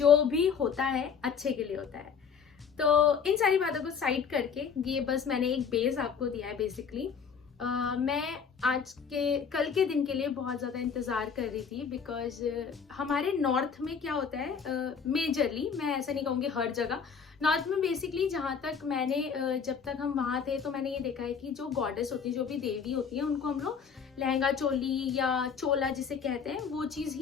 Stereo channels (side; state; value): right; quieter; 6.5 dB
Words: भी होता है अच्छे के लिए होता है। तो इन सारी बातों को साइड करके ये बस मैंने एक बेस आपको दिया है बेसिकली। मैं आज के कल के दिन के लिए बहुत ज़्यादा इंतज़ार कर रही थी, बिकॉज हमारे नॉर्थ में क्या होता है, मेजरली, मैं ऐसा नहीं कहूँगी हर जगह, नॉर्थ में बेसिकली जहाँ तक मैंने जब तक हम वहाँ थे तो मैंने ये देखा है कि जो गॉडेस होती है, जो भी देवी होती है, उनको हम लोग लहंगा चोली या चोला जिसे कहते हैं वो चीज़